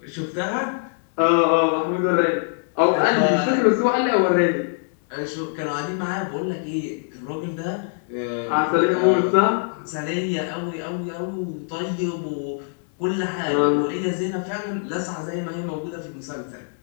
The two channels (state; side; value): silent; right; 63 dB below the other